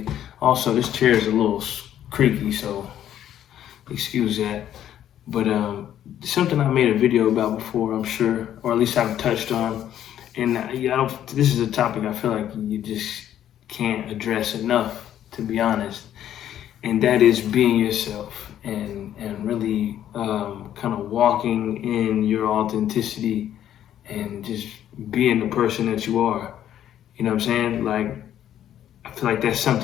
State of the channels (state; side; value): quieter; right; 11.0 dB